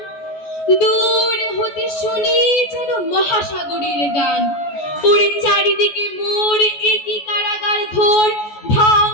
দূর হতে শুনি যেন মহাসাগরের গান। ওরে চারিদিকে মোর একই কারাগার ঘোর। ভাঙ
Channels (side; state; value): right; late; 14 ms